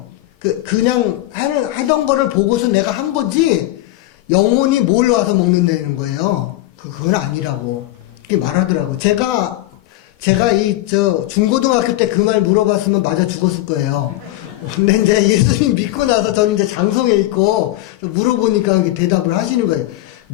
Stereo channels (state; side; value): quieter; right; 16.3 dB